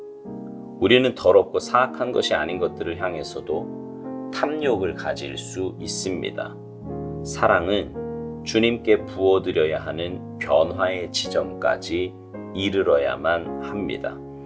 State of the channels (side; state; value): both; identical; correlation 1.00